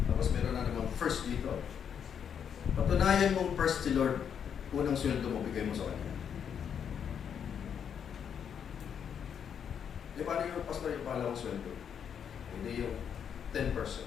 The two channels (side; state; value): right; quieter; 7.9 dB